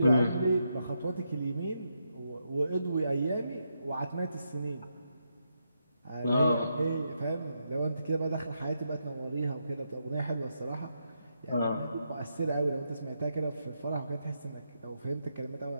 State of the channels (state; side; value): inverted; both; correlation -0.82